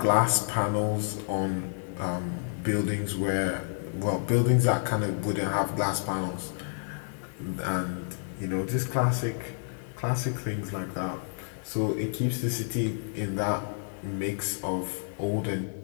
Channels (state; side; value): silent; right; digital silence